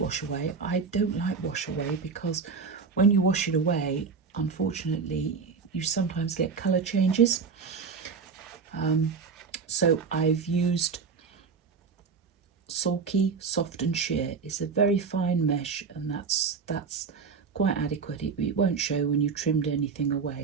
away. I don't like wash away because when you wash it away, unfortunately, you sometimes get colour changes. So I've used sulky, soft and sheer. It's a very fine mesh, and that's quite adequate. It won't show when you trimmed anything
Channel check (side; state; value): left; quieter; 5.3 dB